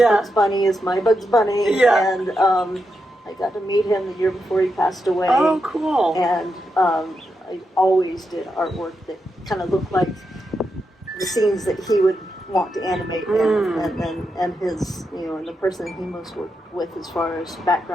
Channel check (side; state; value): both; normal; correlation 0.85